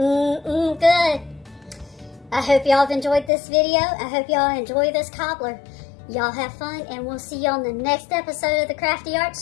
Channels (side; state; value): right; drops out; at 3.3 s